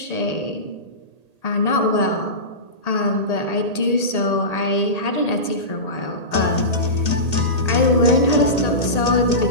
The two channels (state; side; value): late; right; 1.8 ms